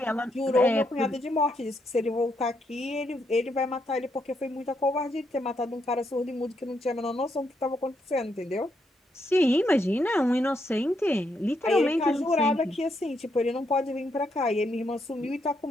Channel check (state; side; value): normal; both; correlation 0.78